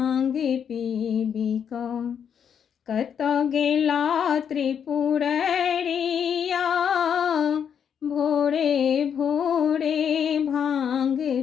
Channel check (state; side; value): quieter; right; 7.9 dB